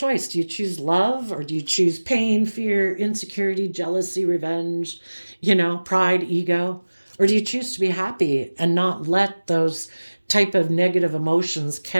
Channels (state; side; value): inverted; both; correlation -1.00